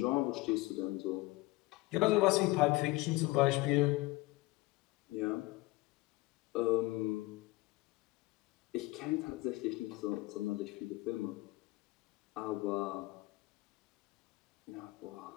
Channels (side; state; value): right; quieter; 20.7 dB